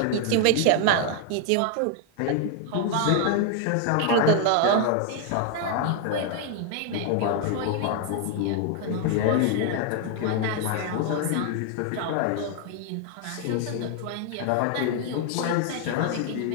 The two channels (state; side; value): different; both; correlation 0.00